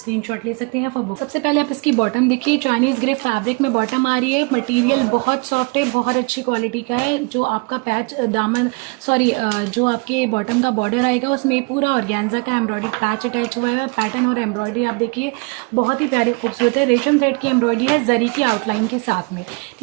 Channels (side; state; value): left; quieter; 31.2 dB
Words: ले सकते हैं फॉर बुक। सबसे पहले आप इसकी बॉटम देखिए, चाइनीज़ ग्रे फैब्रिक में बॉटम आ रही है। मटेरियल बहुत सॉफ्ट है, बहुत अच्छी क्वालिटी का है। जो आपका पैच दामन जो आपके बॉटम का बॉर्डर आएगा उसमें पूरा ऑर्गेन्जा का एम्ब्रॉयडरी पैच अटैच हुआ है। पैटर्न और एम्ब्रॉयडरी आप देखिए बहुत ही प्यारी खूबसूरत है, रेशम थ्रेड की एम्ब्रॉयडरी है जरी की आउटलाइन के साथ में।